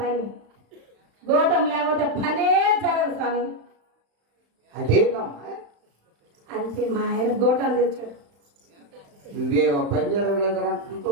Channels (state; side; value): late; left; 35 ms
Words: గోటం లేకపోతే పనే జరగదు స్వామి. అదేందమ్మా? అంతే మా ఆయన గోటాలు తెచ్చాడు. నువ్వే పని